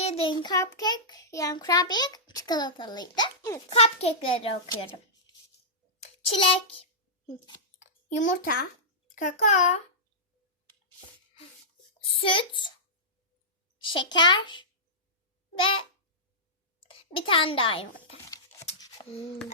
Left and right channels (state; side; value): normal; both; correlation -0.15